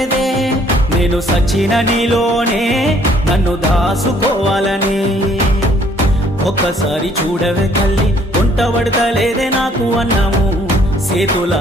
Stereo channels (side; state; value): both; normal; correlation 0.62